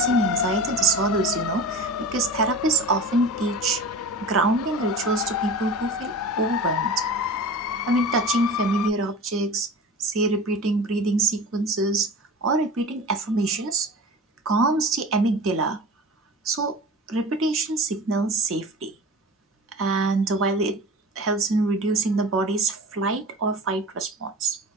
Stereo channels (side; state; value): both; normal; correlation 0.35